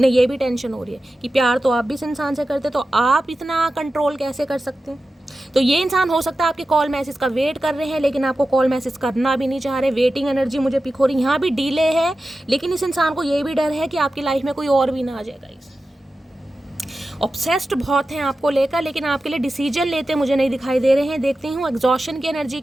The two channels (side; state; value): both; normal; correlation 0.93